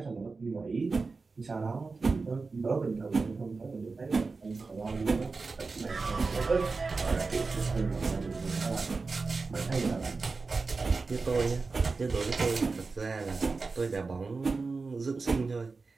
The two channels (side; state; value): left; quieter; 4.1 dB